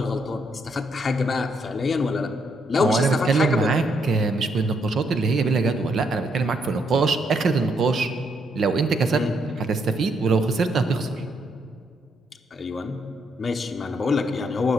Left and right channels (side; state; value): both; normal; correlation 0.75